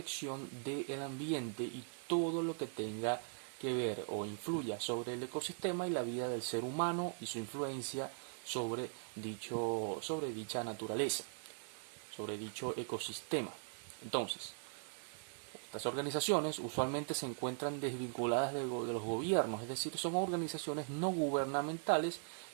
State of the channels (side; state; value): left; silent; digital silence